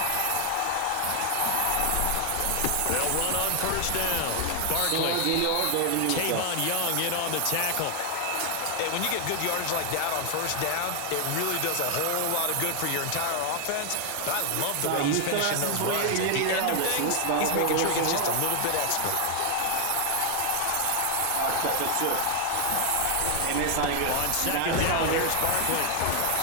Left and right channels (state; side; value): different; both; correlation 0.00